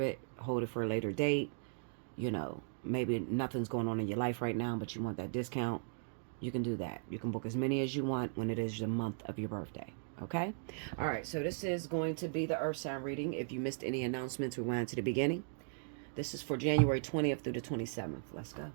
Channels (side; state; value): left; silent; digital silence